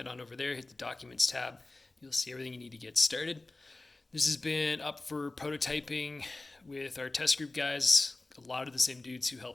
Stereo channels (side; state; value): right; quieter; 3.1 dB